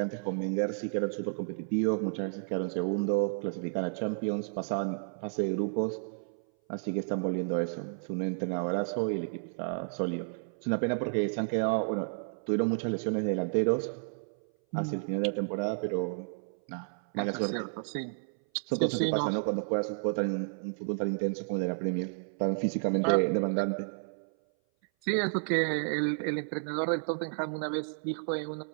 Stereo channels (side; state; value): left; silent; 57 dB below the other